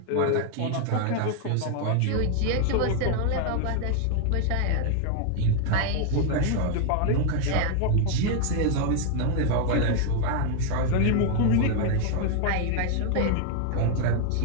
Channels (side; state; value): both; different; correlation 0.00